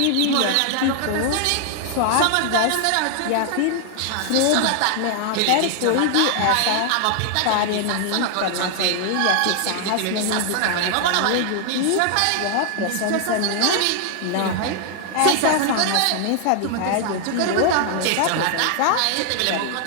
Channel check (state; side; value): different; both; correlation 0.00